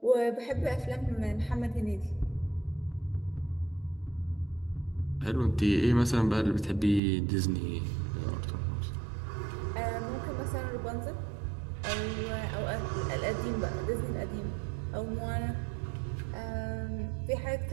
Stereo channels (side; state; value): left; drops out; at 7.0 s